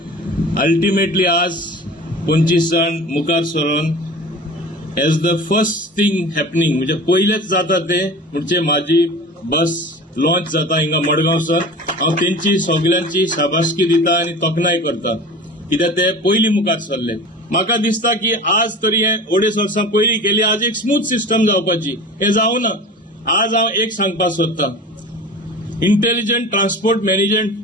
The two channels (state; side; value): normal; both; correlation 0.36